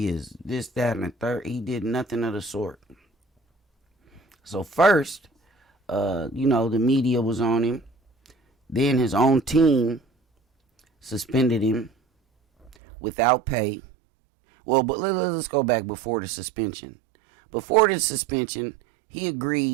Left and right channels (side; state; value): left; drops out; at 12.7 s